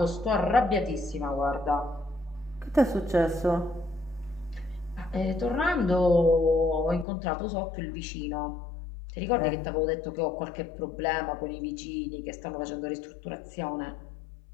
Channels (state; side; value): drops out; right; at 7.1 s